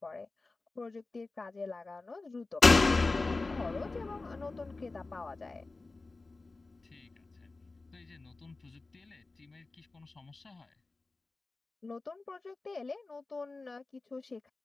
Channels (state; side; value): quieter; right; 3.5 dB